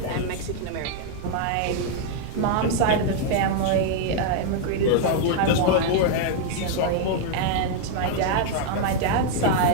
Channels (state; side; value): different; both; correlation 0.00